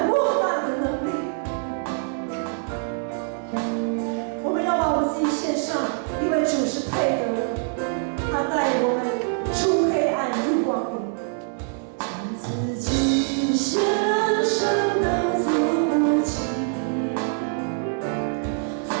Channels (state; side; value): silent; left; 59 dB below the other